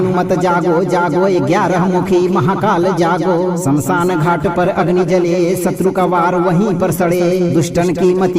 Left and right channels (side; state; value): both; identical; correlation 1.00